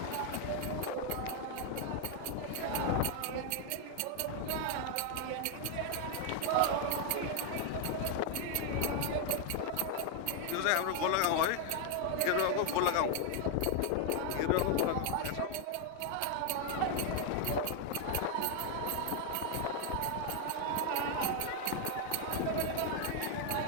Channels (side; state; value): both; different; correlation 0.00